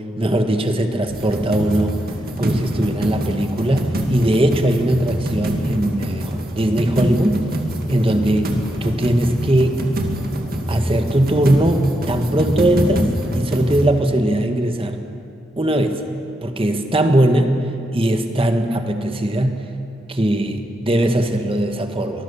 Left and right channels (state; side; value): normal; both; correlation 0.83